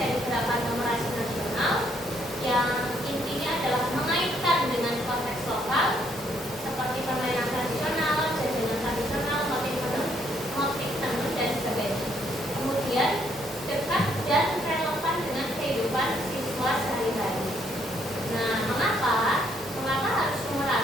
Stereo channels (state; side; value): normal; both; correlation 0.70